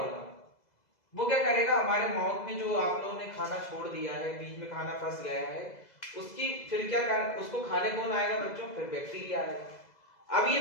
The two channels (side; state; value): right; late; 2.0 ms